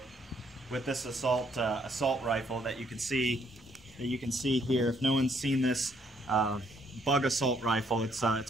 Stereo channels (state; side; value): normal; both; correlation 0.69